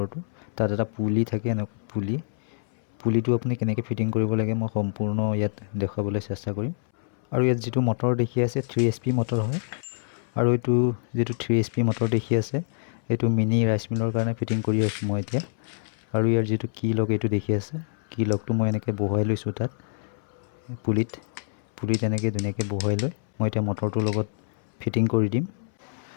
তাত এটা পুলি থাকে, এনেকুৱা পুলিটো আপুনি কেনেকৈ ফিটিং কৰিব লাগে মই সম্পূৰ্ণ ইয়াত দেখুৱাবলৈ চেষ্টা কৰিম। আৰু ইয়াত যিটো মটৰ দেখি আছে 3 HP মটৰ হয়। আৰু এইটো যিটো 3 HP মটৰ দেখি আছে এইটো মিনি ৰাইচ মিলৰ কাৰণে ফিটিং কৰি আছোঁ মই এতিয়া। আৰু ইয়াৰ যিটো কি লক এইটো দেখি আছে, কি লকটো মই এনেকৈ বহুৱাই লৈছোঁ তাত পুলিত এনেকৈ ধুনীয়াকৈ বহুৱাই লৈ মই এতিয়া মটৰটোৰ লগত ফিটিং কৰি দিম।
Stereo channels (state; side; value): silent; right; 61 dB below the other